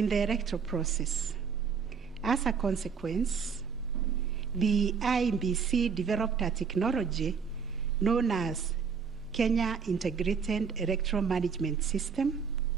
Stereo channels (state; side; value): quieter; left; 6.1 dB